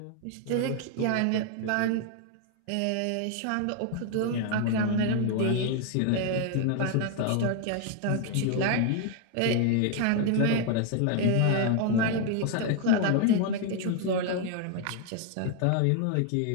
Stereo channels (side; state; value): both; different; correlation 0.00